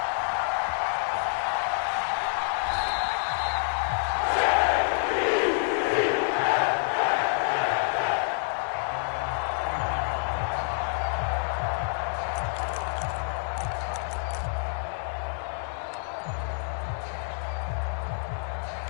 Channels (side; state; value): right; silent; digital silence